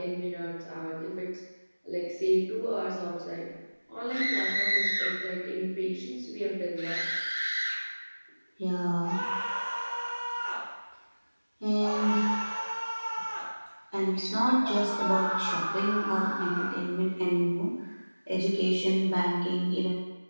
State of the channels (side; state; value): both; inverted; correlation -1.00